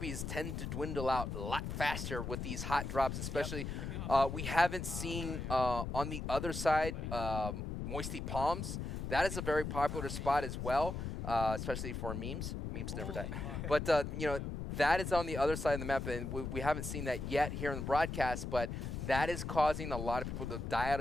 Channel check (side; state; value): left; noise; rumble, 4 dB below the sound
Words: tend to dwindle out a lot faster with these hot drops, especially we haven't seen on the other side Moisty Palms. That is a very popular spot as well, especially for memes. Memes never die. But, that is on the other side of the map, and we haven't seen that yet here in the broadcast, but that is causing a lot of people to die out